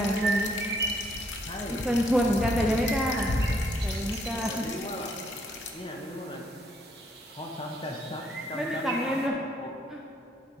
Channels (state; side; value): normal; both; correlation 0.69